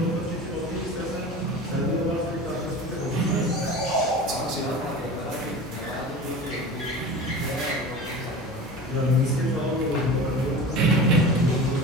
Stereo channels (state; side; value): normal; both; correlation 0.34